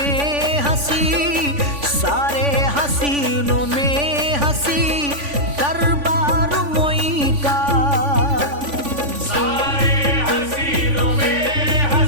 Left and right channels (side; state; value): left; late; 3.5 ms